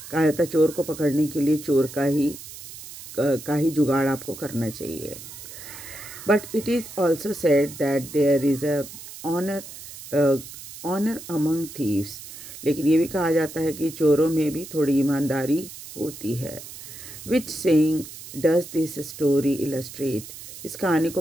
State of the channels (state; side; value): noise; right; hiss, 14 dB below the sound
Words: कहा जाता है चोर को पकड़ने के लिए चोर का ही जुगाड़ आपको करना चाहिए। But it is also said that there is a honour among thieves. लेकिन ये भी कहा जाता है कि चोरों में भी थोड़ी ईमानदारी होती है। Which saying does this story illustrate. इस कहानी